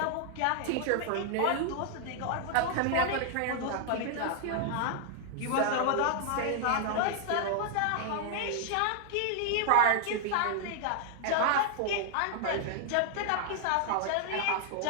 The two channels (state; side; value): different; both; correlation 0.00